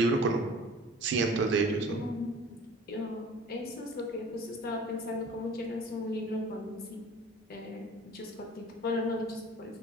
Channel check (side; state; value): both; normal; correlation 0.45